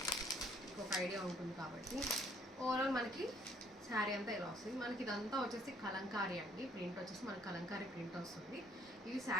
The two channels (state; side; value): normal; both; correlation 0.63